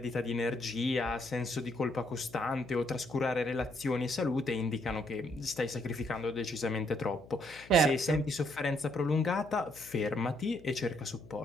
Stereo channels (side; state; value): left; noise; hum, 21 dB below the sound